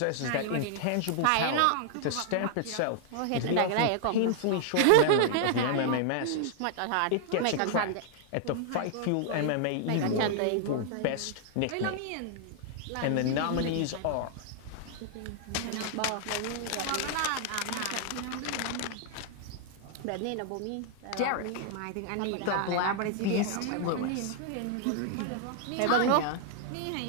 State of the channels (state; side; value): different; both; correlation -0.01